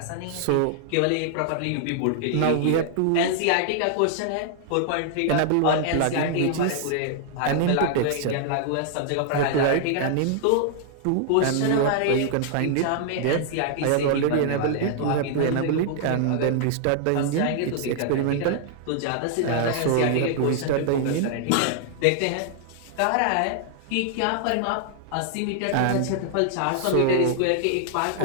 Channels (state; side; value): different; both; correlation -0.01